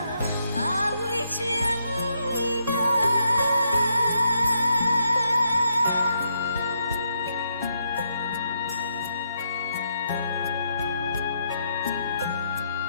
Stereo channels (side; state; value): both; inverted; correlation -0.77